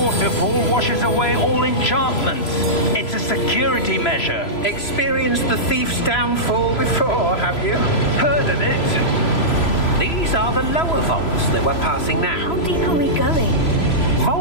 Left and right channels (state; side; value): late; right; 3.0 ms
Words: washes away all enchantments. It's a security measure. Experienced the thief's downfall before, have you? Heard of it? These are the lower vaults that we're passing now. How deep are we going?